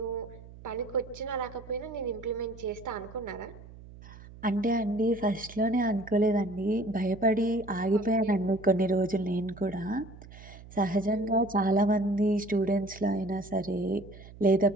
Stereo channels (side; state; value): right; noise; hum, 18 dB below the sound